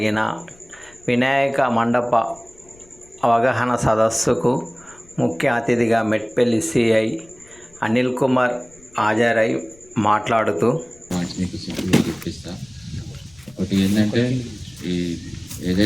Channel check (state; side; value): noise; left; rumble, 28 dB below the sound